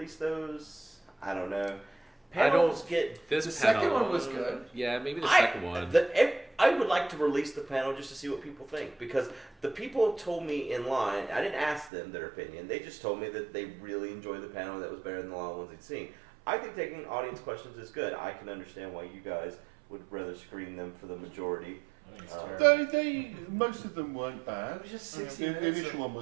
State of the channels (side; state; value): left; drops out; at 11.9 s